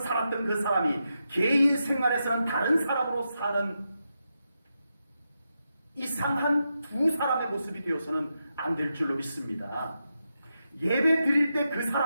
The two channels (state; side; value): inverted; both; correlation -0.86